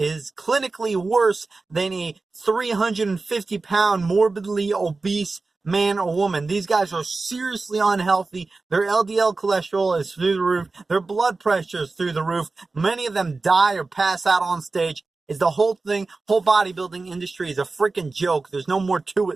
clinically worse than a 350-pound morbidly obese man or woman. These guys are seriously unhealthy. Their LDL cholesterol is through the roof. Their blood pressure is through the roof. Many of them die or pass out on stage. Is the whole bodybuilding industry is a freaking joke. There's no more to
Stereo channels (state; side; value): quieter; left; 3.7 dB